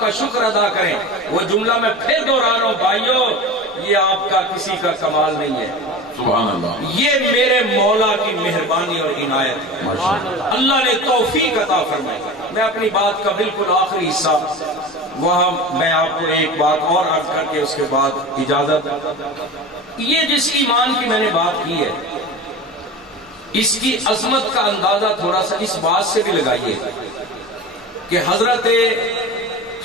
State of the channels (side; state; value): both; normal; correlation 0.32